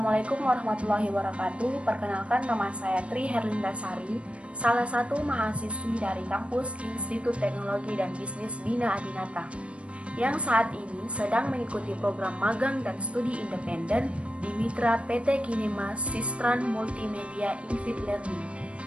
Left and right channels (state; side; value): late; left; 0.061 ms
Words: warahmatullahi wabarakatuh. Perkenalkan, nama saya Tri Herlindasari, salah satu mahasiswi dari kampus Institut Teknologi dan Bisnis Bina Adinata, yang saat ini sedang mengikuti program magang dan studi independen di Mitra PT Kinema Sistran Multimedia Infit Learning.